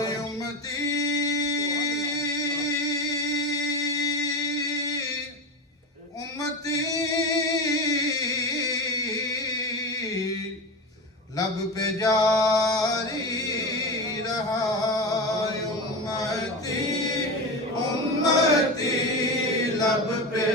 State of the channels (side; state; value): both; normal; correlation 0.23